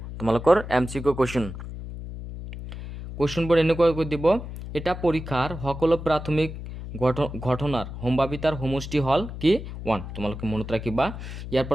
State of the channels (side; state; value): left; noise; hum, 9 dB below the sound